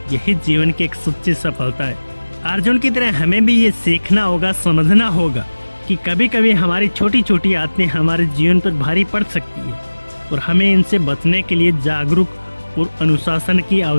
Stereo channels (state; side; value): inverted; both; correlation -1.00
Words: यही जीवन की एक सच्ची सफलता है। अर्जुन की तरह हमें भी ये सीखना होगा, समझना होगा कि कभी कभी हमारी छोटी छोटी आदतें हमारे जीवन पर भारी पड़ सकती है और हमें इनसे बचने के लिए जागरूक और अनुशासन की